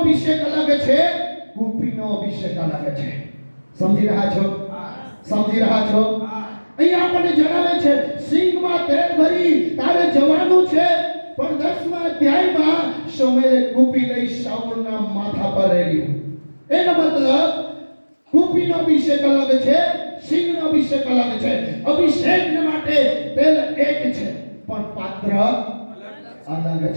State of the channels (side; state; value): both; inverted; correlation -1.00